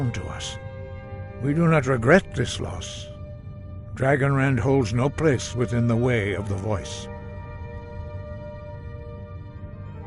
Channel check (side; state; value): both; identical; correlation 1.00